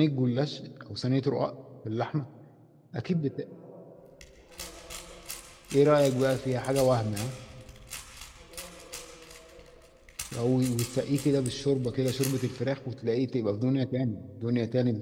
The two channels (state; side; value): identical; both; correlation 1.00